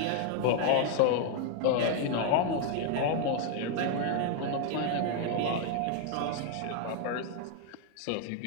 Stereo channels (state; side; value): different; both; correlation 0.00